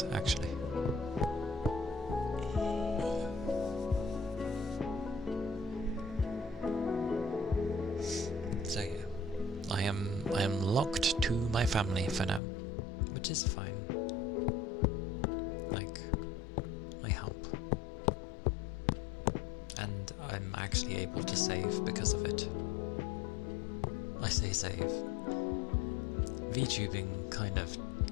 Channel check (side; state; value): right; drops out; at 12.4 s